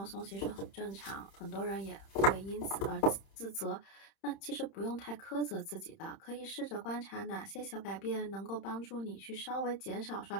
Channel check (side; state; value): right; late; 31 ms